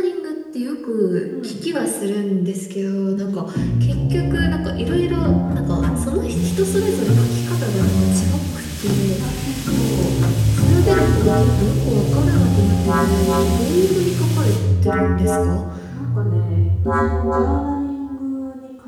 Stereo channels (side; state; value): both; identical; correlation 1.00